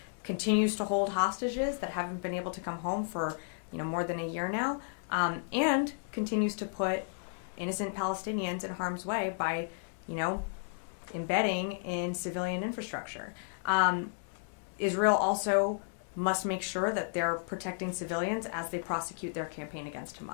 continues to hold hostages that haven't been able to come home for more than a year now, and continues to put innocent Palestinians in harm's way by embedding in civilian infrastructure. Israel also must make sure that they're protecting civilians as they prosecute their campaign against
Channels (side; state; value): right; silent; digital silence